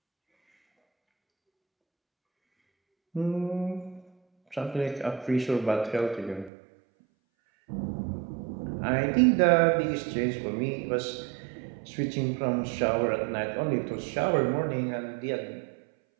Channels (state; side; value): drops out; left; at 6.5 s